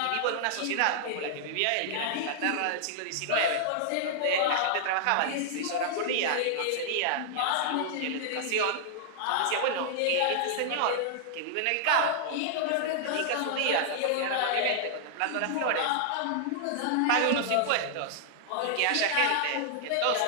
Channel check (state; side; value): different; both; correlation -0.01